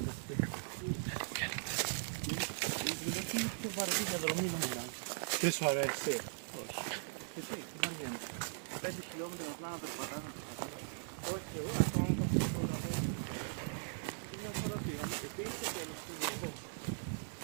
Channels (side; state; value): left; silent; 51 dB below the other